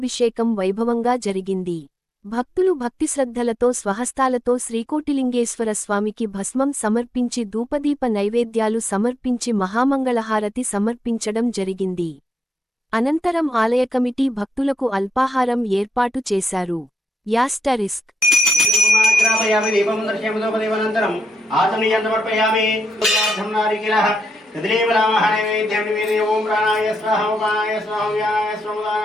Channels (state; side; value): normal; both; correlation 0.84